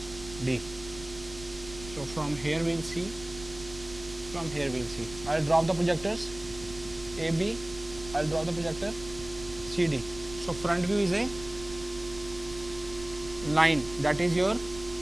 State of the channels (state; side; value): noise; right; rumble, 15 dB below the sound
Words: D. So, from here we will see, from here we will see. I will drop the projectors A, B, I will draw the projector C, D. So, front view is a line, that is your